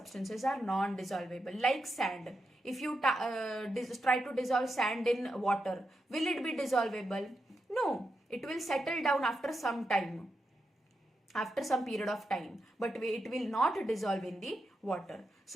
are non-dissolvable, like sand. If you try to dissolve sand in water, will it be dissolvable? No, it will settle down after some time, after some period of time, but it will not dissolve in the water.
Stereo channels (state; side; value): normal; both; correlation 0.86